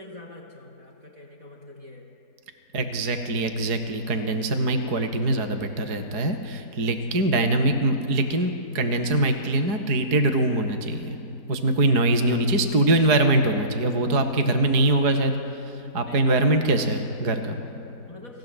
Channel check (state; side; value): late; left; 4.7 ms